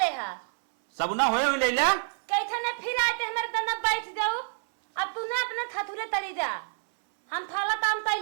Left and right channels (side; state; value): left; silent; 60 dB below the other